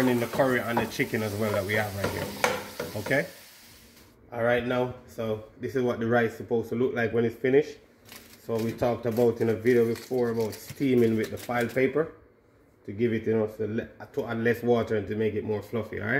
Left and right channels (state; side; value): identical; both; correlation 1.00